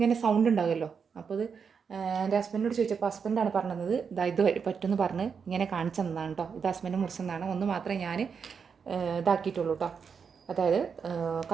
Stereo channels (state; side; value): quieter; left; 6.2 dB